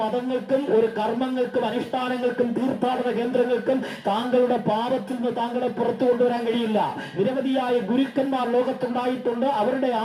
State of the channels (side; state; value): both; identical; correlation 1.00